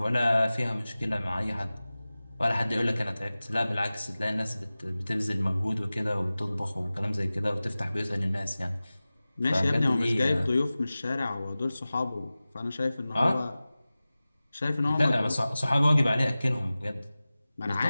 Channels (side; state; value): both; inverted; correlation -0.97